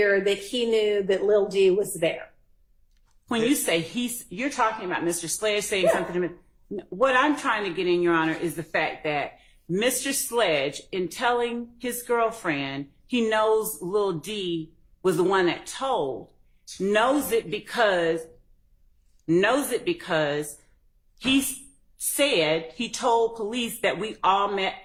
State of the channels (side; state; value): both; identical; correlation 1.00